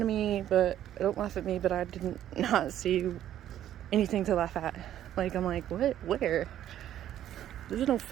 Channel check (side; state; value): left; quieter; 11.5 dB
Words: of me, but don't laugh at me, but I didn't not see anything to laugh at. Like, I'm like, what? Where? There's no